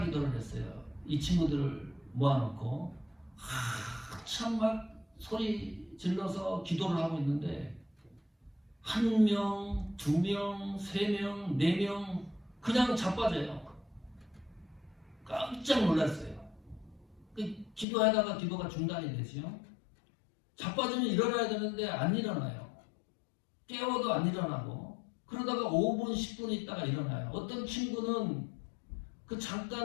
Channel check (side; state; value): right; drops out; at 17.9 s